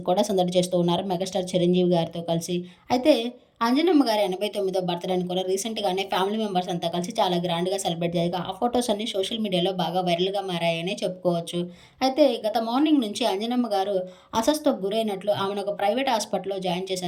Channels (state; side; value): identical; both; correlation 1.00